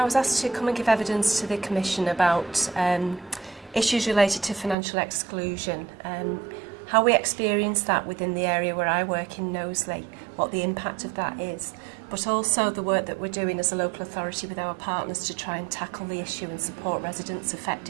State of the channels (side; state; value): left; drops out; at 4.8 s